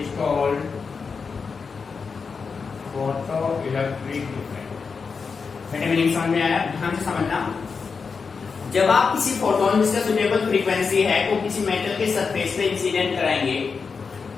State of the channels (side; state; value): right; quieter; 5.2 dB